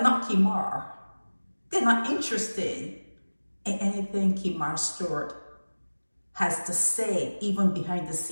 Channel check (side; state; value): both; inverted; correlation -1.00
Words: not Kemar. They're not interested in anything Kemar Stewart has to say, even behind the